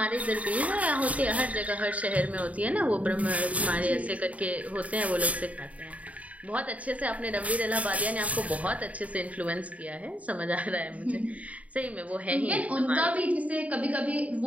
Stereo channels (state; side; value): late; left; 0.069 ms